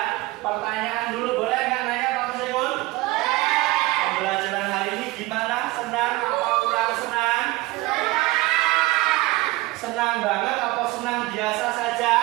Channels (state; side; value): quieter; left; 20.5 dB